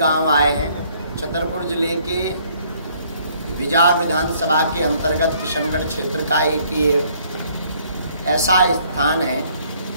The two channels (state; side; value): inverted; both; correlation -0.63